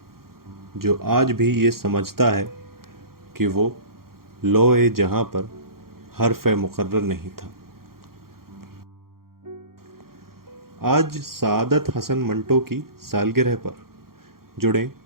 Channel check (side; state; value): left; late; 0.93 ms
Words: जो आज भी ये समझता है कि वो लौह जहां पर हर्फ मुकर्रर नहीं था। आज सआदत हसन मंटो की सालगिरह पर जुड़े